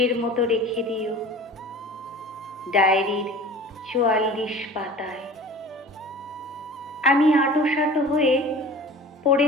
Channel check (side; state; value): both; normal; correlation 0.41